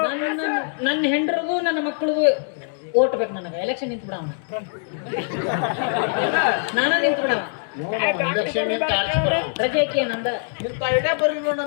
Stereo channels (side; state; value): right; silent; digital silence